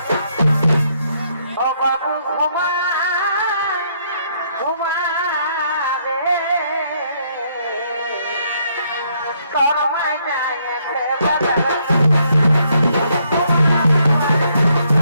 ও বাবু ঘুমা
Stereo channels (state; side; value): inverted; both; correlation -0.71